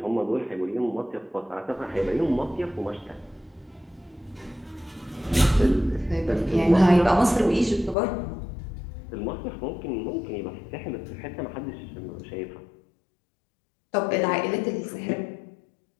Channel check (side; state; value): right; drops out; at 8.0 s